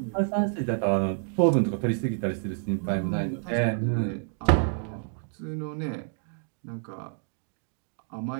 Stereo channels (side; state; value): left; silent; 59 dB below the other